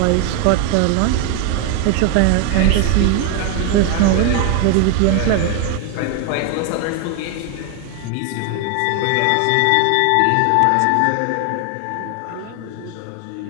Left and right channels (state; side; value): different; both; correlation 0.00